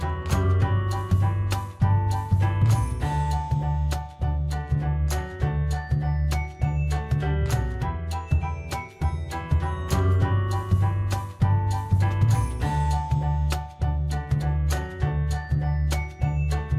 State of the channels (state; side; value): identical; both; correlation 1.00